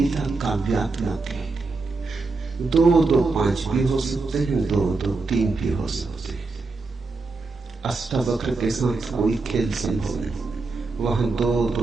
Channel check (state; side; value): quieter; left; 3.8 dB